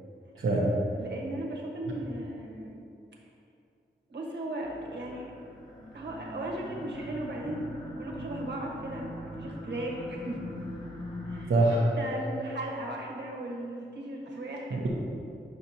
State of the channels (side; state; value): both; normal; correlation 0.67